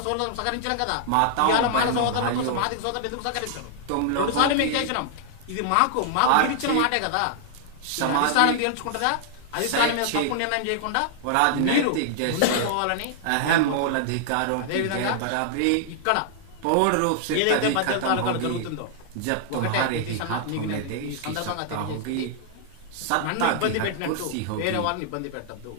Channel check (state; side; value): different; both; correlation -0.01